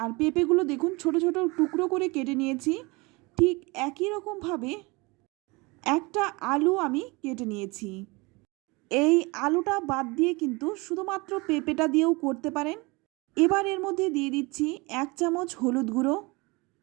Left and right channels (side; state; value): left; quieter; 25.7 dB